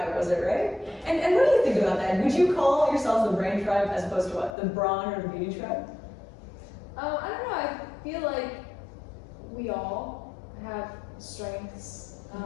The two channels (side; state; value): right; drops out; at 4.5 s